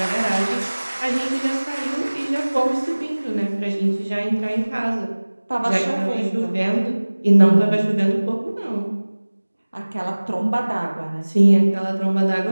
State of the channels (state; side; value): inverted; both; correlation -1.00